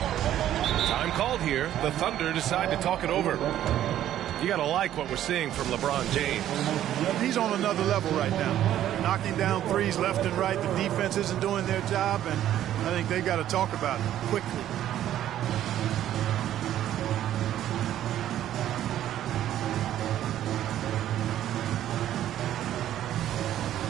Time called here. The Thunder decide to talk it over. You got to like what we're seeing from LeBron James. He's on another level right now. Knocking down threes left and right. The defense isn't doing their job, and I think they've got to talk about it quickly.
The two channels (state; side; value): quieter; left; 11.9 dB